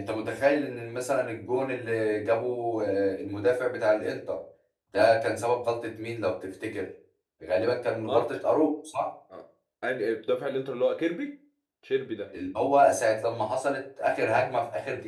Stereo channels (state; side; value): identical; both; correlation 1.00